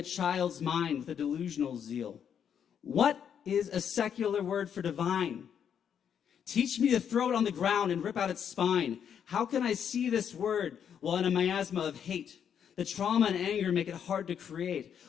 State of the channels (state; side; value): quieter; right; 8.2 dB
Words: child's mind with a delusional zeal. What is a secular word for divine? Teach me to throw it on the ground and rip out its spine. How can I see this word while in a miasma of hate? The trauma and anger make it hard to create.